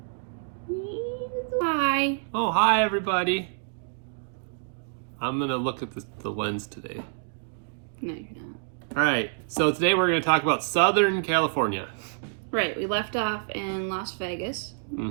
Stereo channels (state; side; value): silent; left; digital silence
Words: Hi. Oh, hi everybody. I'm gonna look at the lens today. No, you're not. All right, so today we're gonna talk about Southern California. Right, we left off in Las Vegas.